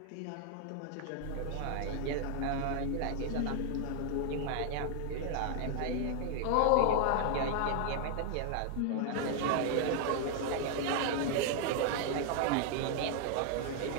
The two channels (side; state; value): both; different; correlation 0.00